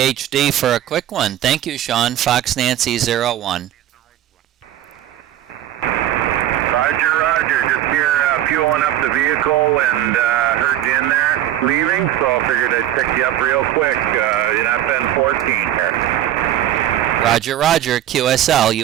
for a quick one. Thank you, Sean. Fox Nancy 01. Roger. Just here fueling up the vehicle and heard you in there leaving, so I figured I'd pick you up real quick. You're not been 14 here. Roger. QSL,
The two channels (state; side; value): quieter; left; 12.3 dB